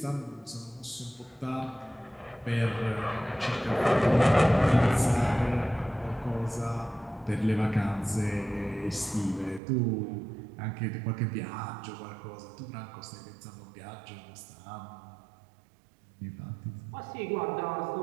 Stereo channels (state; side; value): drops out; left; at 9.6 s